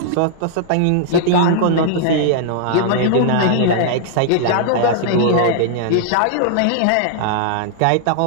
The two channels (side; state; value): both; different; correlation -0.01